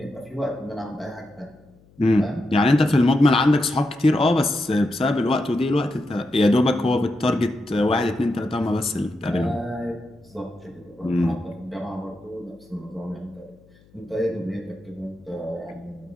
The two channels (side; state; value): left; noise; hum, 29 dB below the sound